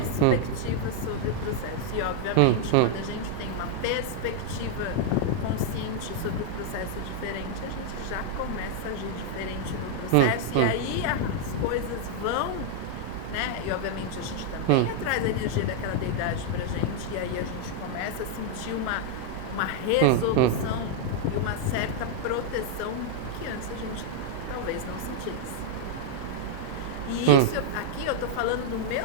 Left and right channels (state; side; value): different; both; correlation -0.01